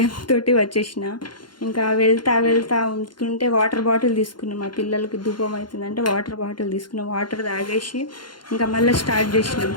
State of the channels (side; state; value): right; late; 0.71 ms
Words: వచ్చేసిన. ఇంకా వెళ్తా ఉంటుంటే వాటర్ బాటిల్ తీసుకున్నాం. మా పిల్లలకి ధూపం అవుతుందంటే వాటర్ బాటిల్ తీసుకున్నాం. వాటర్ తాగేసి ఇంకా మళ్ళీ స్టార్ట్ చేసినాం